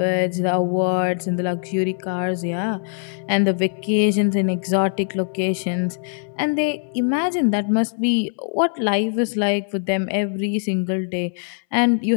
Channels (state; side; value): silent; right; 62 dB below the other